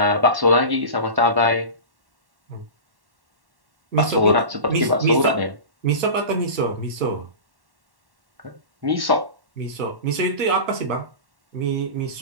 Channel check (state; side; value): late; left; 1.1 ms